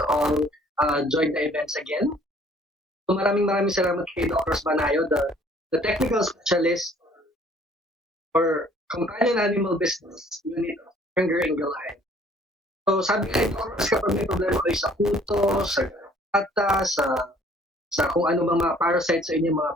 all join the events again. So maraming salamat kay Doc Ross Banayo, the technical specialist for companion animal business unit of Berenger Ingelheim. So sabi nga ito, kapag may problema kayo sa puto, sa gata, sa kung ano mga parasites sa inyong mga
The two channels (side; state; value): both; normal; correlation 0.57